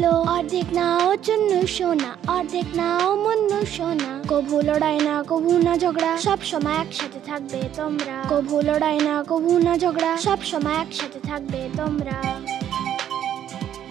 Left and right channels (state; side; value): quieter; left; 10.5 dB